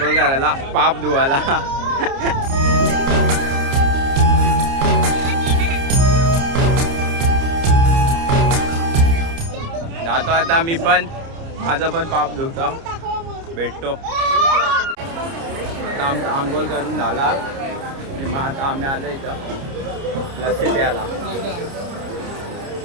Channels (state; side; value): late; left; 30 ms